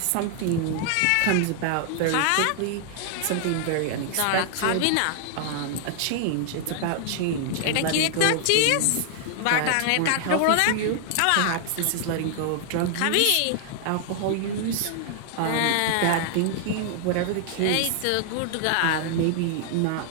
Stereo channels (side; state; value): both; different; correlation 0.00